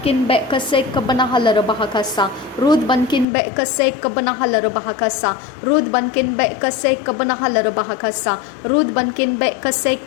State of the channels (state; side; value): drops out; right; at 3.2 s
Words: बेकसे कब्बना हलर बहकसा रूद बनकिन बेकसे कब्बना हलर बहकसा रूद बनकिन बेकसे कब्बना हलर बहकसा रूद बनकिन बेकसे